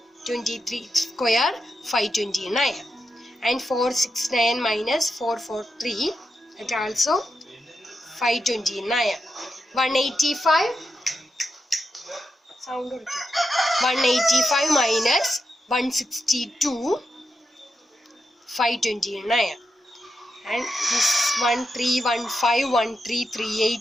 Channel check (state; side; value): normal; both; correlation 0.87